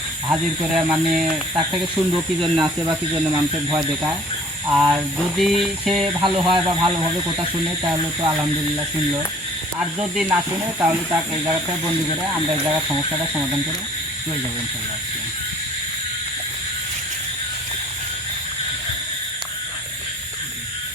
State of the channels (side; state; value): both; normal; correlation 0.52